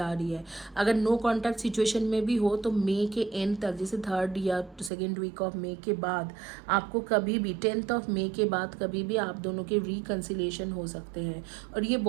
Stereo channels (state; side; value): drops out; left; at 4.9 s